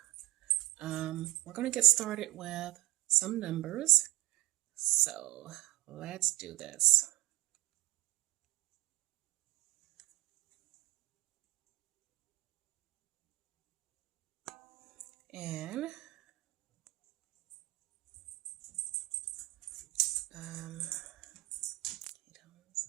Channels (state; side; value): quieter; left; 18.6 dB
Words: We're going to get started with some numbers. So let's do this. And